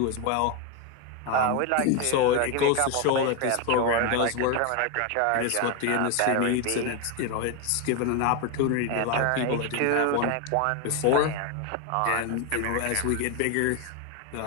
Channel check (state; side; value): different; both; correlation 0.02